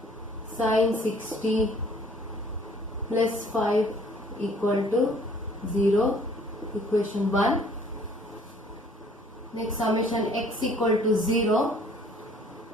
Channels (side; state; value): both; normal; correlation 0.57